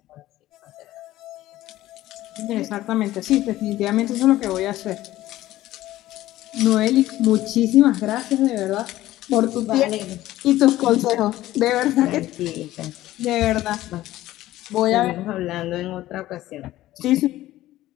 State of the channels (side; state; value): right; quieter; 15.4 dB